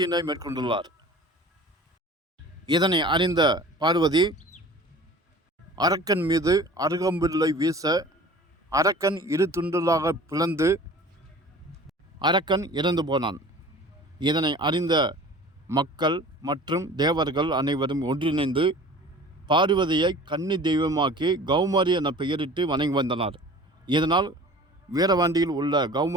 மேற்கொண்டுள்ளார். இதனை அறிந்த பார்வதி அரக்கன் மீது அருகம்பில்லை வீச அரக்கன் இரு துண்டுகளாக பிளந்து அரக்கன் இறந்து போனான். இதனை அறிந்த மக்கள் மற்றும் தேவர்கள் அனைவரும் ஒன்றிணைந்து பார்வதியை கன்னி தெய்வமாக்கி கௌமாரி என பெயரிட்டு வணங்கி வந்தனர். இதனால் வீரவாண்டியில் உள்ள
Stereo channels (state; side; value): normal; both; correlation 0.43